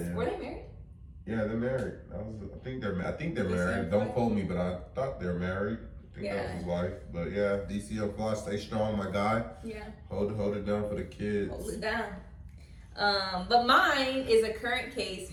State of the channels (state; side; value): identical; both; correlation 1.00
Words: married? Yeah, they're married. I think they're married. Don't quote me, but I thought they're married. I think that was his wife. But yeah, DC Unsolved, stay strong, my guy. Yeah. Hold it down for the kids. Hold it down. But mine is a current case